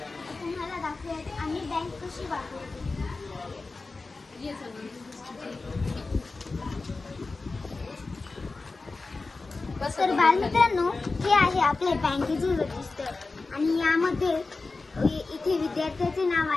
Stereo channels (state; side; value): quieter; right; 3.7 dB